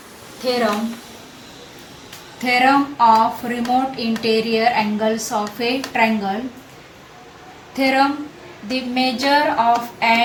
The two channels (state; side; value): identical; both; correlation 1.00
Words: Theorem. Theorem of remote interior angles of a triangle. Theorem. The measure of